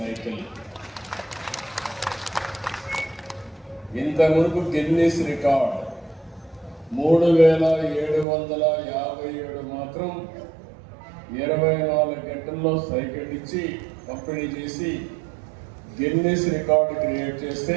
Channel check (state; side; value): drops out; left; at 8.2 s